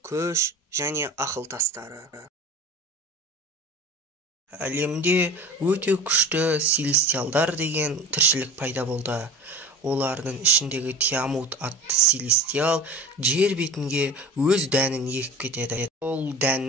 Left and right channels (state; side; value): normal; both; correlation 0.36